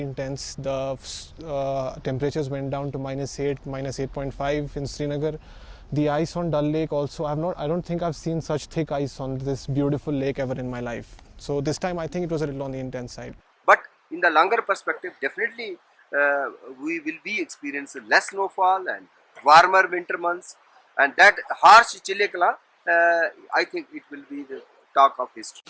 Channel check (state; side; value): identical; both; correlation 1.00